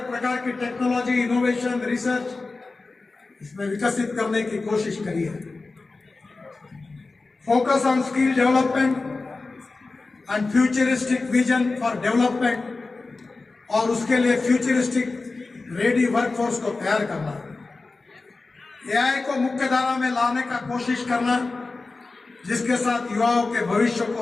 प्रकार की टेक्नोलॉजी, इनोवेशन, रिसर्च इसमें विकसित करने की कोशिश करिए। Focus on skill development and futuristic vision for development, और उसके लिए फ्यूचरिस्टिक रेडी वर्कफोर्स को तैयार करना। AI को मुख्य धारा में लाने का कोशिश करना, जिसके साथ युवाओं के भविष्य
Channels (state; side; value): quieter; right; 3.7 dB